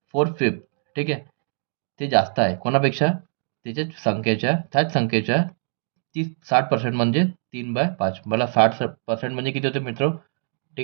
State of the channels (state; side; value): silent; left; digital silence